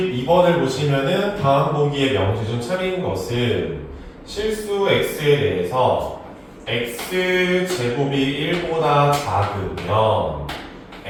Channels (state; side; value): identical; both; correlation 1.00